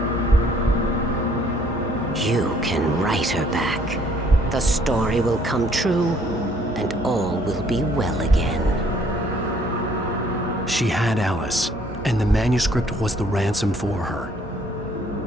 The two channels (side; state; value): both; normal; correlation 0.62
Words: You can write her back. The story will come true, and all will be well again. She had Alice, and the manuscript was the ransom for her.